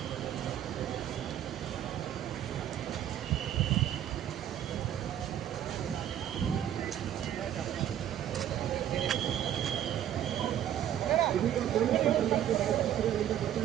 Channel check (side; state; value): left; quieter; 10.8 dB